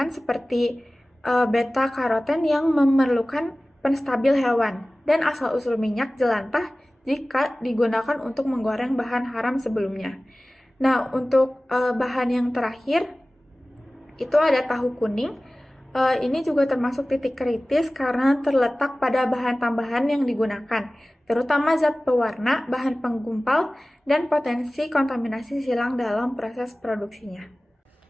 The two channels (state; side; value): normal; both; correlation 0.97